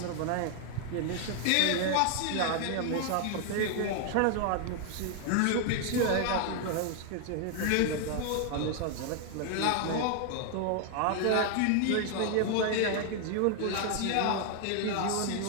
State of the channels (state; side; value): different; both; correlation 0.00